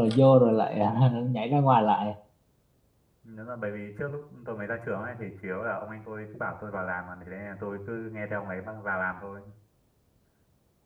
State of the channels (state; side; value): identical; both; correlation 1.00